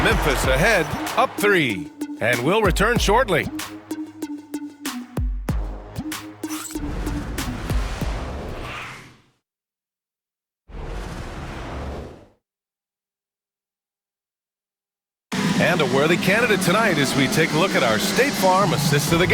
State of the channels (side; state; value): both; identical; correlation 1.00